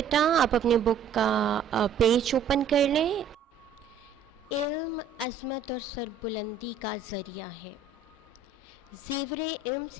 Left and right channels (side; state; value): left; quieter; 5.8 dB